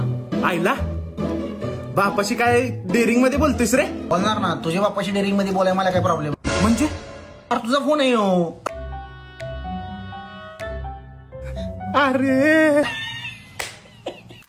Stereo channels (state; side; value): identical; both; correlation 1.00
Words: आईला बापाशी काय डेअरिंग मध्ये बोलतोयस रे? बोलणार ना, तुझ्या बापाशी डेअरिंग मध्ये बोलाय मला काय प्रॉब्लेम? म्हणजे अरे तुझा फोन आहे यो. अरे